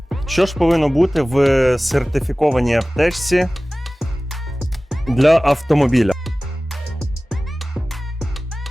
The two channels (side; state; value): both; normal; correlation 0.97